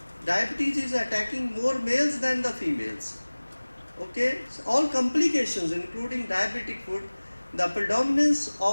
Diabetes is attacking more males than the females. Okay, so all complications including diabetic foot, the predominance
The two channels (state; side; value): inverted; both; correlation -1.00